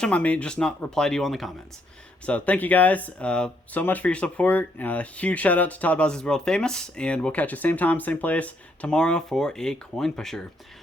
them. I may just not reply to you on the comments. So thank you guys so much for your support. Huge shout out to Todd Bowsley's World Famous, and we'll catch you same time, same place tomorrow for a coin pusher.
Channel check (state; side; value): normal; both; correlation 0.73